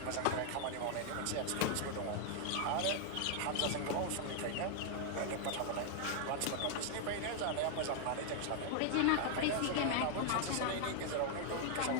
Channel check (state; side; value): different; both; correlation 0.00